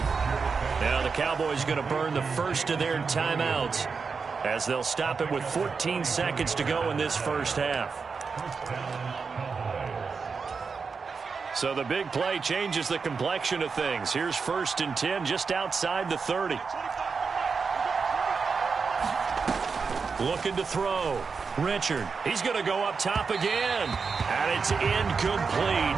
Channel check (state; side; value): quieter; left; 5.1 dB